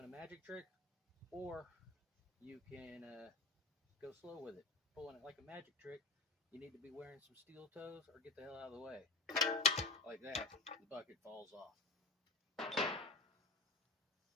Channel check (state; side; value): quieter; right; 3.2 dB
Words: a magic trick, or you can go slow with it. Pulling it like a magic trick, you need to be wearing some steel toes or get the hell out of the way. Like that, the bucket falls off.